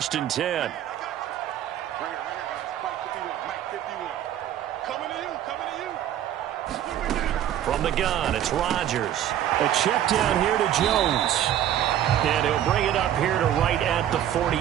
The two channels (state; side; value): quieter; left; 11.2 dB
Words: and 10. From the gun, it's Rodgers. A check down here to Jones. And he'll bring it up here to right at the